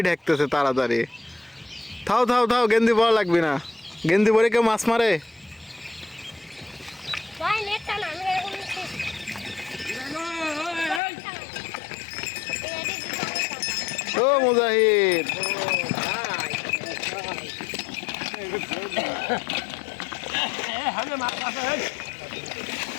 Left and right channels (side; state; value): right; drops out; at 11.0 s